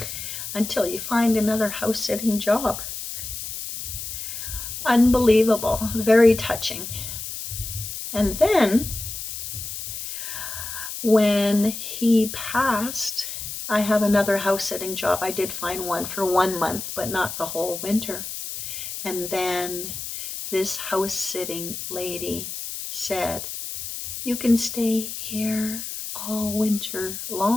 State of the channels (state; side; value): noise; left; hiss, 7 dB below the sound